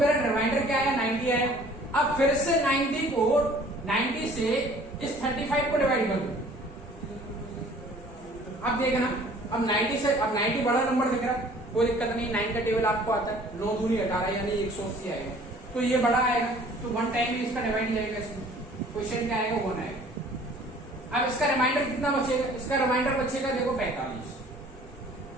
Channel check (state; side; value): normal; both; correlation 0.52